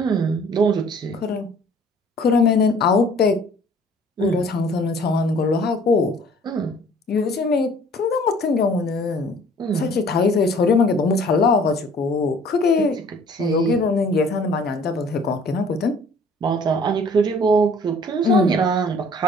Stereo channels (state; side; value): normal; both; correlation 0.53